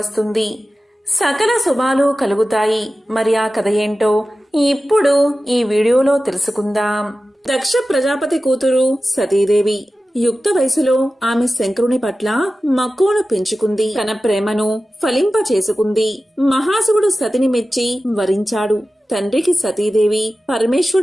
సకల శుభాలు కలుగుతాయి. మరి ఆ కథ ఏంటో ఇప్పుడు ఈ వీడియోలో తెలుసుకుందాం. దక్ష ప్రజాపతి కూతురు సతీదేవి యుక్త వయసులో ఆమె శంకరుని పట్ల మక్కువను పెంచుకుంది. తన ప్రేమను ఫలింప చేసుకుంది. మహాశివుడు సతిని మెచ్చి వరించాడు. తండ్రికి సతీదేవి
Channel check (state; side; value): normal; both; correlation 0.95